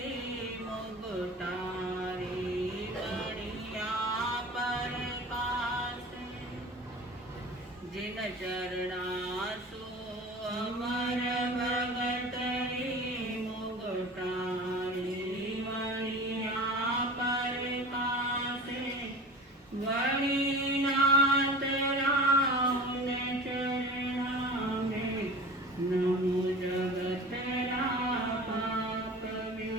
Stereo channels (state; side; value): normal; both; correlation 0.37